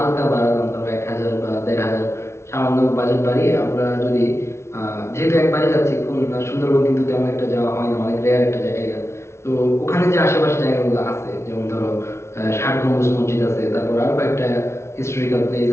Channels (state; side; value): late; right; 0.13 ms